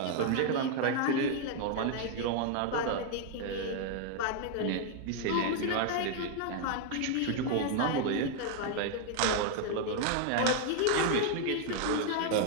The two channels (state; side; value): different; both; correlation 0.00